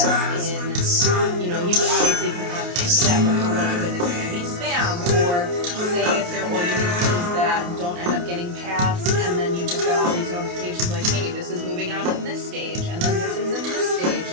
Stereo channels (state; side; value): late; left; 28 ms